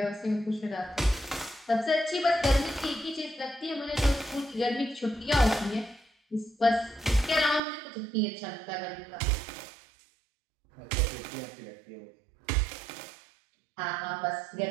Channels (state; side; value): drops out; left; at 7.6 s